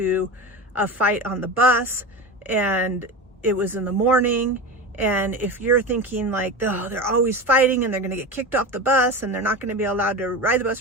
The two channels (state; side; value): normal; both; correlation 0.25